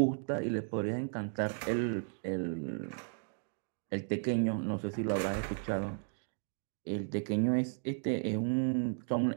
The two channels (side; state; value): left; silent; digital silence